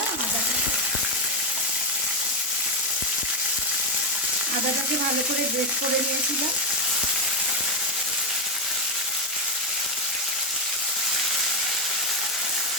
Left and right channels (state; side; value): normal; both; correlation 0.08